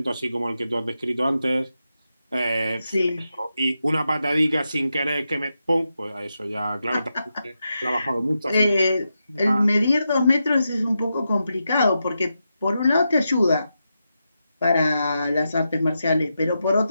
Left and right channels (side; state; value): both; inverted; correlation -0.87